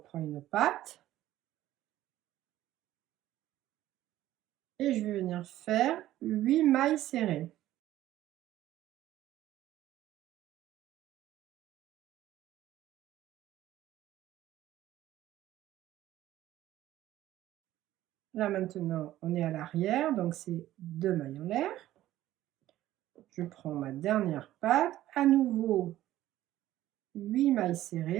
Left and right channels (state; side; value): quieter; left; 14.2 dB